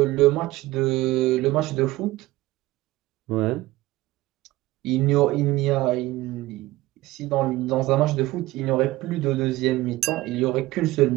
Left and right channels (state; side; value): quieter; left; 18.1 dB